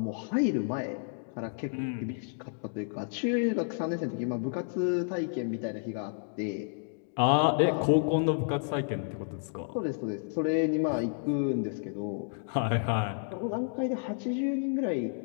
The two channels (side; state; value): right; silent; digital silence